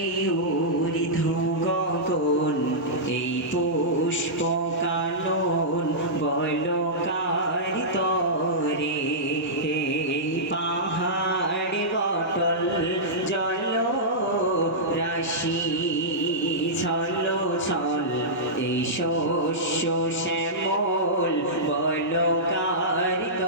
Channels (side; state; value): both; normal; correlation -0.14